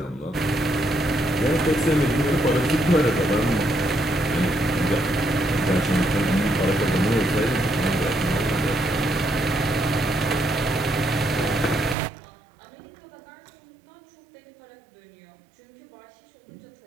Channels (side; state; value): left; drops out; at 12.0 s